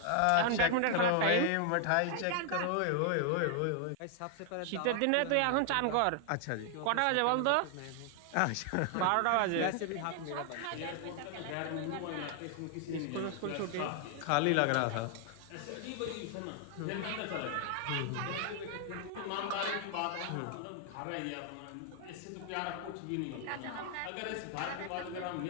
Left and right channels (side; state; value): both; different; correlation 0.00